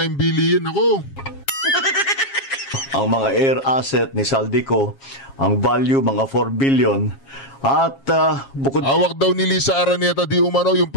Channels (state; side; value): late; right; 7.4 ms